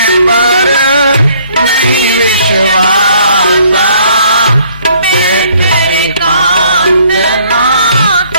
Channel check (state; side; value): inverted; both; correlation -0.62